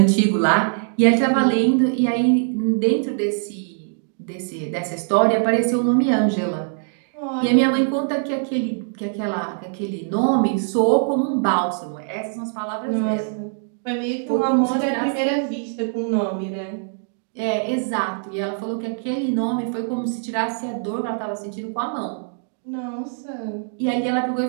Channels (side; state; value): left; silent; digital silence